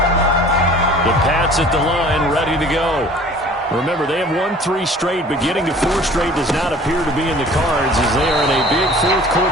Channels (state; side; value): normal; both; correlation 0.48